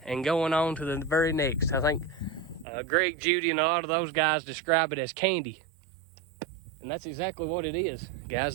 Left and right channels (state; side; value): drops out; left; at 2.7 s